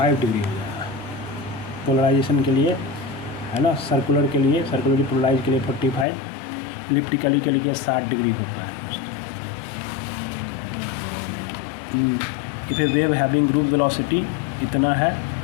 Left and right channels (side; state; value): right; drops out; at 6.1 s